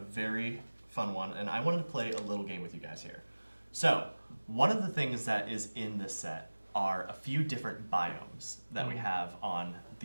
fun one, and I wanted to play a little game with you guys here. So one of the things that is in this set are a few different biomes that we have on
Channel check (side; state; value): both; inverted; correlation -1.00